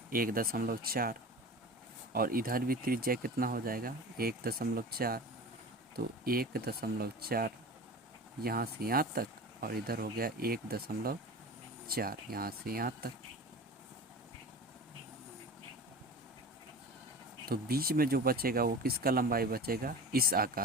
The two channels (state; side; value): normal; both; correlation 0.34